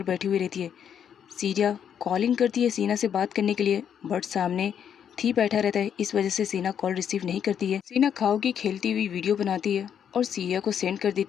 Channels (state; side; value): quieter; right; 8.5 dB